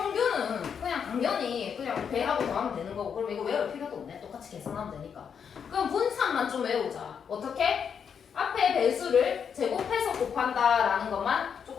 그냥 당연히 그냥 배하고 더하면 되는 거고 그럼 이거 외울 필요도 없네. 똑같이 계산하면 되니까. 그럼 분산만 좀 외우자. 어떻게? 앞에 배수를 제곱해서 곱한다라는 것만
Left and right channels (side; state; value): right; quieter; 7.2 dB